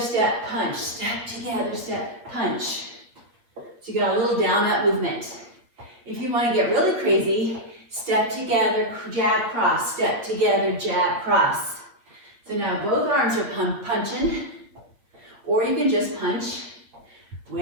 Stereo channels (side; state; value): left; late; 8.6 ms